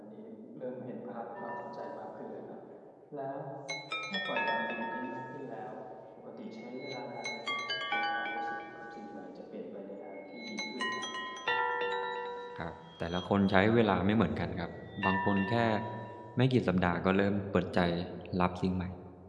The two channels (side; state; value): both; identical; correlation 1.00